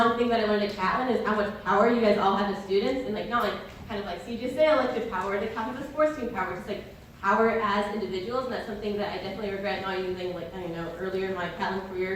thing that I learned at Catlin is how much power you guys all have as students, and like not like kind of like CJ say elective power, the kind of the sports team power, just like power as individuals, and that's something that I definitely regret not using like earlier in my Catlin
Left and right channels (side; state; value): both; identical; correlation 1.00